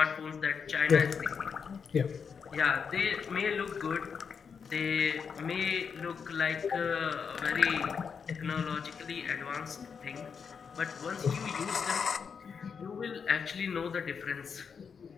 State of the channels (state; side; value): quieter; right; 6.3 dB